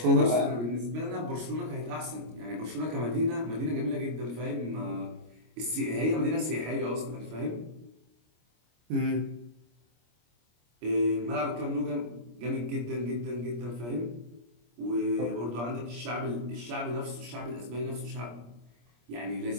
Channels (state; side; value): late; left; 25 ms